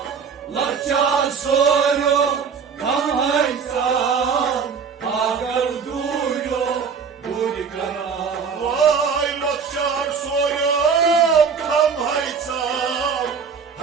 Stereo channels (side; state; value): left; quieter; 6.1 dB